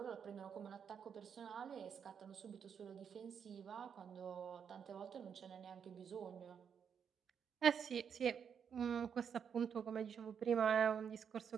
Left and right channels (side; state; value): left; quieter; 7.3 dB